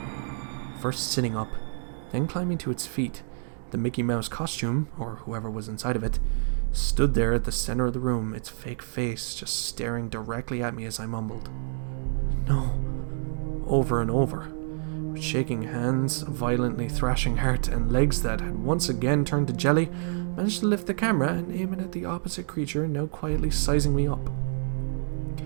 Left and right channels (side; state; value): left; silent; digital silence